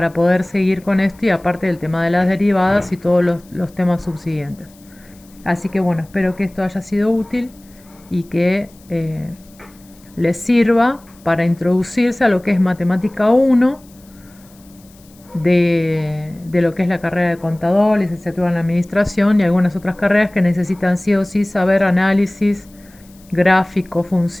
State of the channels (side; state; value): left; noise; hiss, 28 dB below the sound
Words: poder seguir con esto y aparte del tema de las derivadas y todos los temas subsiguientes. Así que bueno, espero que esto haya sido útil y que les sirva para introducirse a lo que es matemática 1 de lo que es la carrera de contador, licenciatura en administración y algunas otras carreras que necesitan sí o sí saber análisis, gráfico,